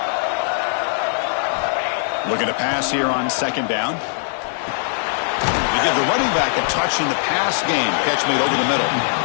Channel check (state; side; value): silent; right; digital silence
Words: Looking to pass here on 2nd down. They give the running back a touch in the pass game. Catch made over the middle.